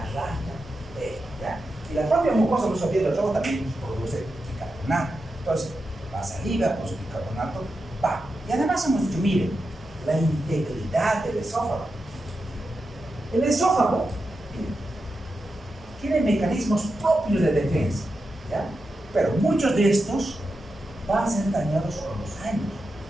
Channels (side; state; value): both; normal; correlation 0.89